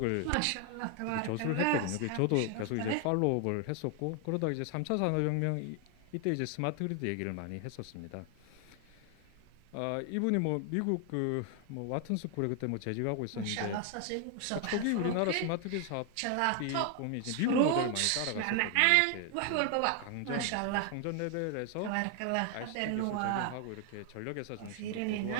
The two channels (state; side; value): different; both; correlation 0.00